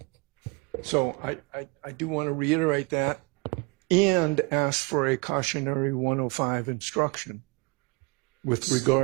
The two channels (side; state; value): left; quieter; 27.2 dB